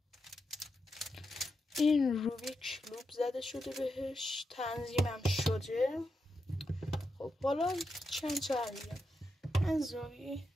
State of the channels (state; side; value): normal; both; correlation 0.86